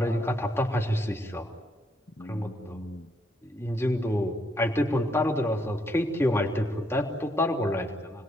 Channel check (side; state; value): both; normal; correlation 0.74